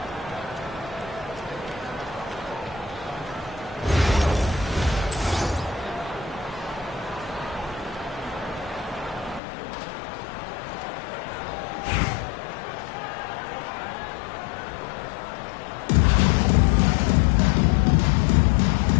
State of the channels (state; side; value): drops out; right; at 9.4 s